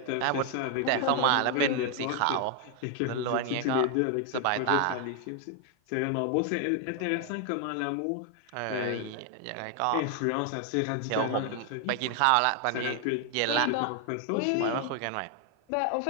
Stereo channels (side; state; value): both; different; correlation 0.00